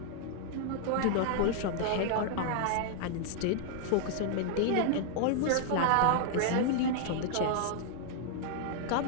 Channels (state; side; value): different; both; correlation -0.01